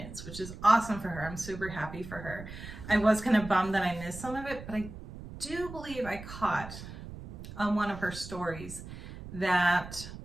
which is awesome for her. I'm super happy for her. I was kind of bummed that I missed some of it, but I do believe I caught on one of her stories that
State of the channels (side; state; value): right; noise; rumble, 12 dB below the sound